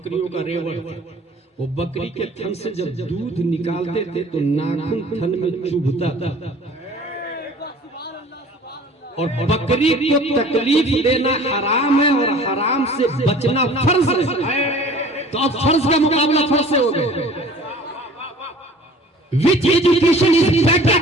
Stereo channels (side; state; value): both; normal; correlation 0.47